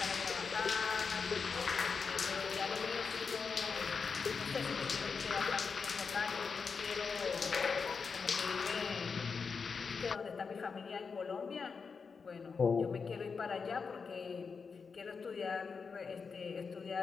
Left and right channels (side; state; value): right; quieter; 5.3 dB